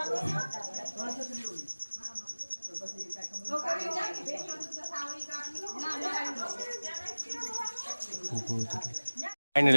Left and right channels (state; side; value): inverted; both; correlation -1.00